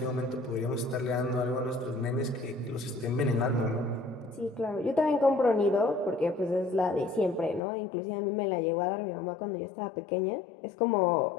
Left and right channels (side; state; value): right; drops out; at 7.6 s